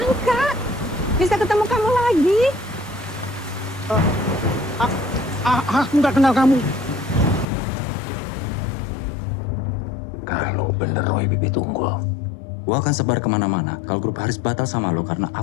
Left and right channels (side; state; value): right; drops out; at 7.5 s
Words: bisa ketemu kamu lagi. Aku nggak kenal kamu. Kalau bener Roy Bibi Tunggul. Gue akan sebar kemana-mana kalau grup Haris batal sama lo karena